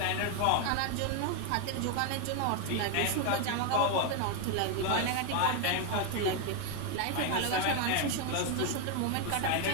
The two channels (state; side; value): different; both; correlation 0.01